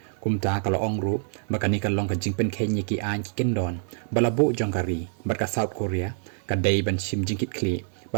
kumta kala ongru baka ni ka long ka jing pen khen ki an ki kendon balabu jongkari ba ka South Korea ka dei ban sim jing kit kli ba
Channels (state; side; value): silent; left; digital silence